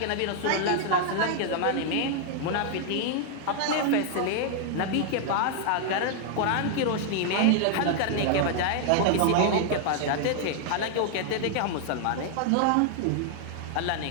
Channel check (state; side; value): different; both; correlation 0.00